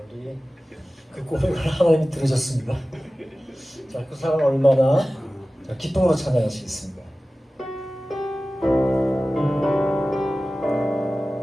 우리 그 고백을 하나님이 들으셨습니다. 자, 그 사람 얼마나 기쁨으로 찬양하시겠습니다.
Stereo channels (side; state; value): both; normal; correlation 0.96